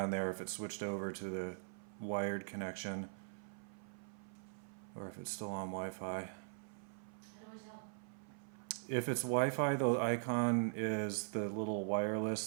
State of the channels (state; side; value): silent; left; 50 dB below the other